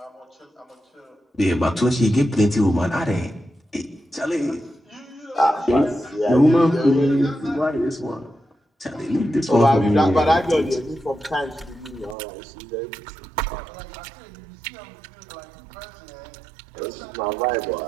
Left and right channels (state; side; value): drops out; left; at 12.2 s